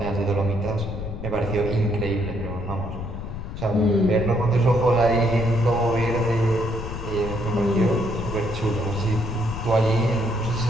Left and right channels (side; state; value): left; noise; rumble, 7 dB below the sound